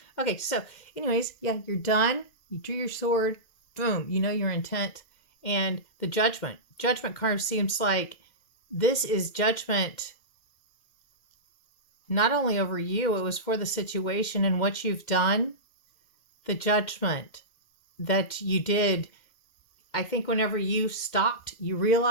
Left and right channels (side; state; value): right; late; 2.1 ms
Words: Okay, so anyways, yeah, you're done. You drew your sword. Boom. You know your intent. And the Judgment. Judgment card seems like this is judgment not only over you, it was for the situation and what you've done. The judgment that you did, I think whenever you stopped, you